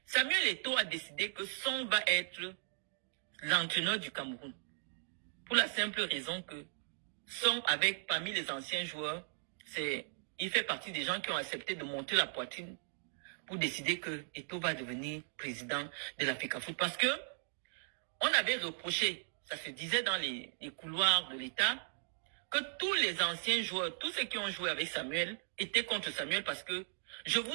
Samuel Eto'o a décidé que Son va être l'entraîneur du Cameroun. Pour la simple raison que Son, parmi les anciens joueurs, il fait partie des gens qui ont accepté de monter la poitrine pour décider que Eto'o va devenir président de l'Africa Foot. Parce que on avait reproché, ça se disait dans les couloirs de l'État, que tous les anciens joueurs, tous ceux qui ont joué avec Samuel, étaient contre Samuel parce que je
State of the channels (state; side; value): silent; left; digital silence